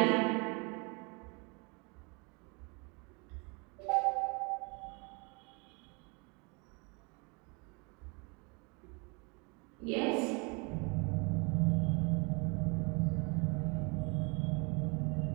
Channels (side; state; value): left; quieter; 31.3 dB